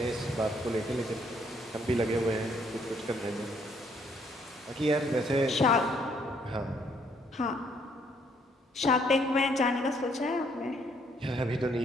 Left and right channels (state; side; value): normal; both; correlation 0.68